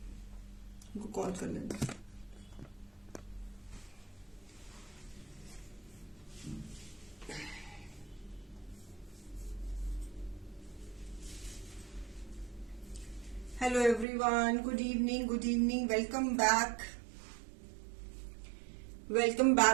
उनको कॉल कर लेना। Hello everyone, good evening, welcome back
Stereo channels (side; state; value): left; drops out; at 14.1 s